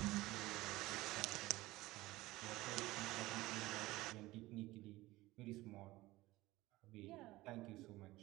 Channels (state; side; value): quieter; left; 18.7 dB